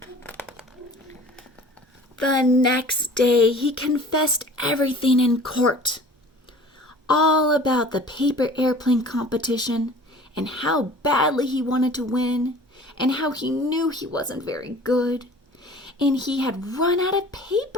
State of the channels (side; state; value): both; normal; correlation 0.46